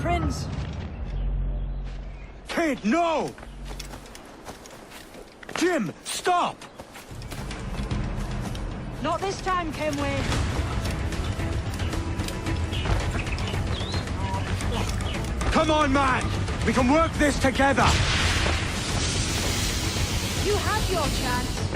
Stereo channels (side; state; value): both; identical; correlation 1.00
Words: Kid, no! Jim, stop! Not this time, Kenway. Come on, man! We can work this together! You had your chance.